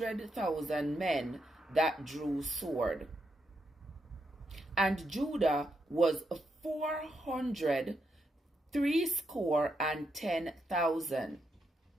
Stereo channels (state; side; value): normal; both; correlation 0.82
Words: men that drew sword. And Judah was 410,000.